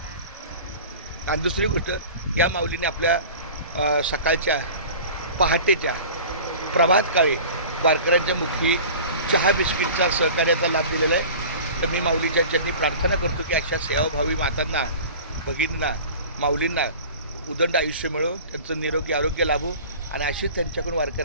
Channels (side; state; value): both; inverted; correlation -0.40